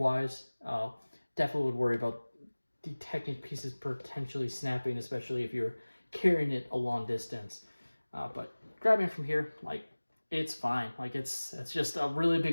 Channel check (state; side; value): inverted; both; correlation -1.00